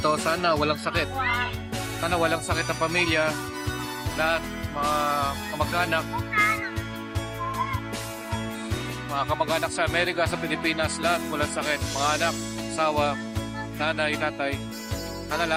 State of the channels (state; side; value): identical; both; correlation 1.00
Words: sana walang sakit. Sana walang sakit ang pamilya. Lahat, mga kamag-anak. Mga kamag-anak sa Amerika, sa Pilipinas, lahat walang sakit. Mga anak, asawa, nanay, tatay. Sana